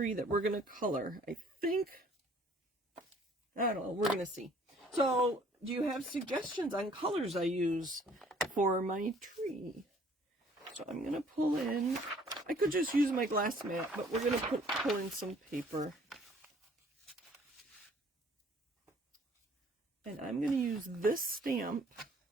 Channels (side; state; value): both; normal; correlation 0.57